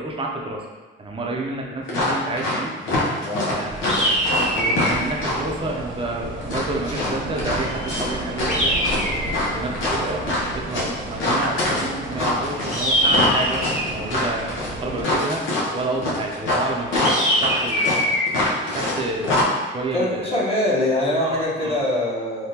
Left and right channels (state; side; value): normal; both; correlation 0.22